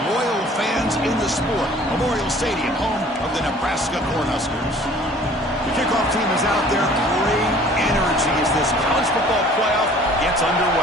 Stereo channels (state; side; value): normal; both; correlation 0.51